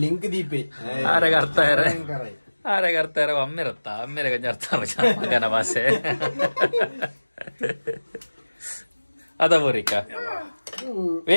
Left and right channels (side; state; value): both; inverted; correlation -1.00